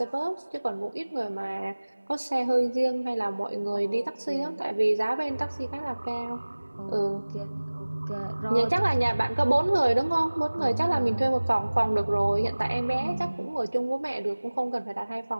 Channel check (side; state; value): both; inverted; correlation -1.00